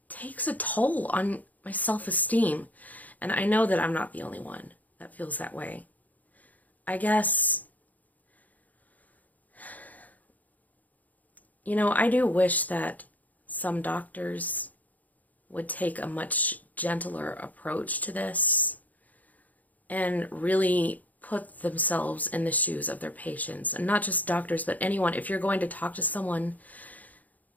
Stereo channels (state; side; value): late; right; 0.078 ms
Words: takes a toll on my self-esteem. And I know that I'm not the only one that feels that way. I guess, I do wish that some doctors would take a much gentler approach to this and really put themselves in the shoes of their patients. And not just doctors, but anyone. If you're going to talk to someone